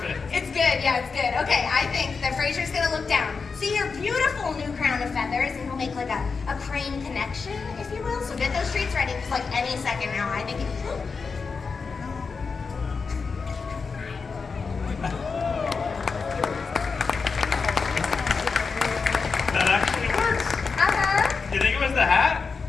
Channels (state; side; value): quieter; right; 4.9 dB